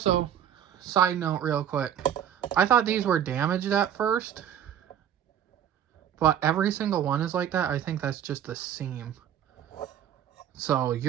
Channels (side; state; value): left; quieter; 9.6 dB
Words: side note real quick, I thought these were damaged at first, but every single one is like that. I think that's just the seam. So